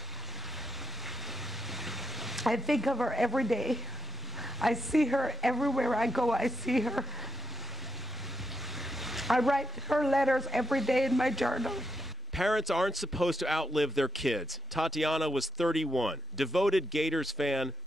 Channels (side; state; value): both; normal; correlation 0.97